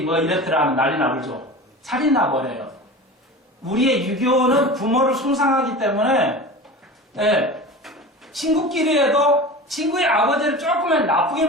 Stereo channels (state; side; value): normal; both; correlation 0.33